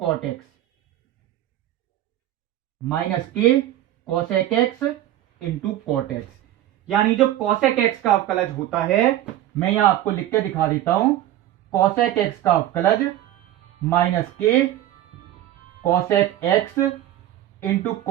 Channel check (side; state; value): left; quieter; 13.2 dB